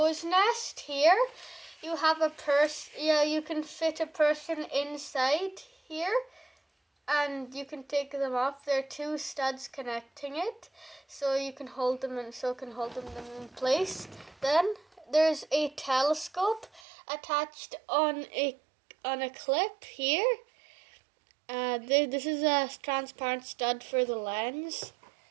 nest here, you have a you can fit a person inside here and you can take them off. There are two studs connecting it, so you can hold them in place. Then there's a telescope attached on a clip here. This is a transparent stud for the lens,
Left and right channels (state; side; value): drops out; left; at 16.8 s